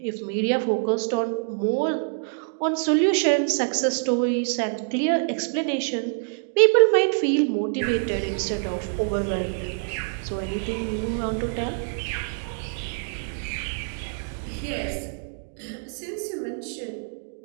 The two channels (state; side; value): silent; left; digital silence